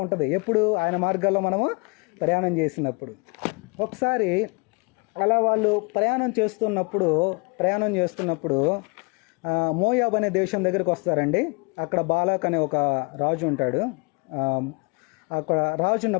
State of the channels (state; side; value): quieter; right; 31.3 dB